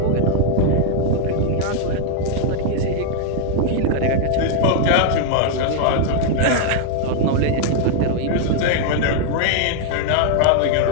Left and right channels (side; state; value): both; different; correlation -0.01